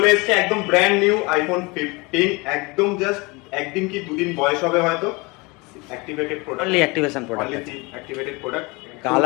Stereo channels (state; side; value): quieter; right; 26.1 dB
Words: এসেছে একদম ব্র্যান্ড নিউ আইফোন 15, একদম জাস্ট একদিন কি দুদিন বয়স হবে হয়তো। Activated product, only activation product, activated product,